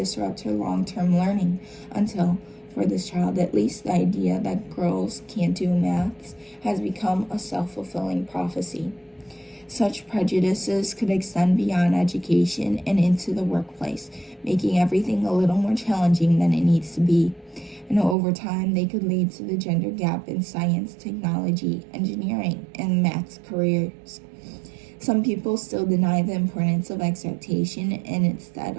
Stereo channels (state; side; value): drops out; left; at 18.2 s